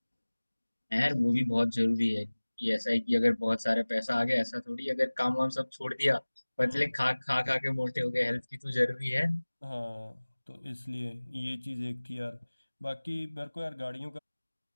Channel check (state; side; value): inverted; both; correlation -1.00